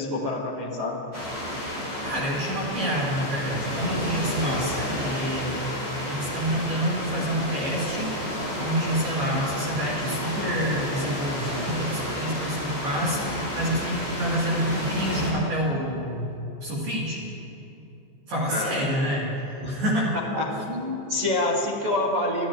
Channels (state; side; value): late; left; 14 ms